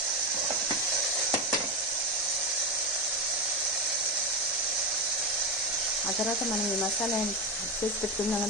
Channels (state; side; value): normal; both; correlation 0.13